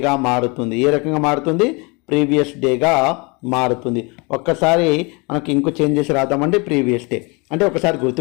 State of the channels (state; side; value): quieter; right; 29.0 dB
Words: మారుతుంది. ఏ రకంగా మారుతుంది? ప్రీవియస్ డేగా మారుతుంది. ఒక్కసారి మనకి ఇంకో చేంజ్ చేసి రాద్దామండి. ప్రీవియస్ డే అంటే ఒకసారి